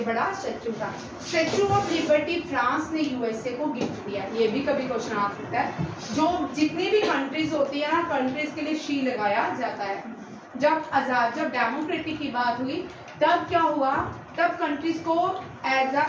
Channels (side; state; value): both; identical; correlation 1.00